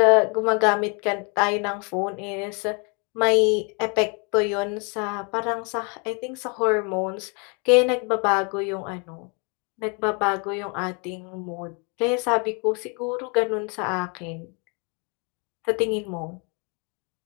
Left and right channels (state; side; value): quieter; right; 34.2 dB